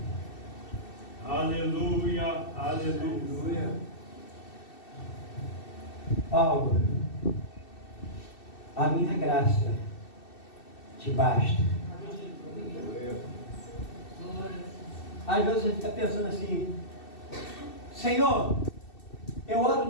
Aleluia, aleluia. Paulo, A minha graça te basta. Às vezes a gente está pensando assim: Senhor, eu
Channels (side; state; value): right; late; 2.7 ms